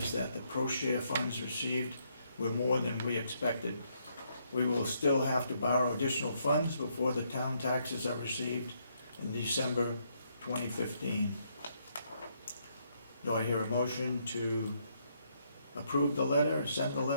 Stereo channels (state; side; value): inverted; both; correlation -0.74